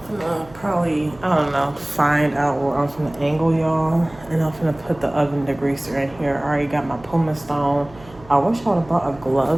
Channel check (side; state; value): right; noise; hum, 22 dB below the sound